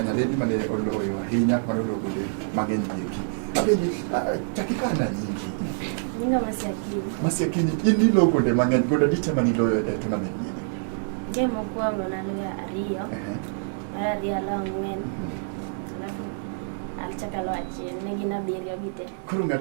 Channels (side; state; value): left; silent; digital silence